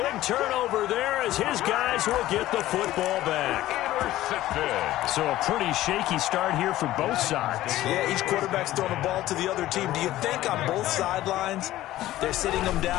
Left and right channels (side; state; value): right; quieter; 15.1 dB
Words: turnover there as his guys will get the football back. Intercepted. So a pretty shaky start here for both sides. Yeah, each quarterback's throwing a ball to the other team. Do you think on both sidelines they're sitting them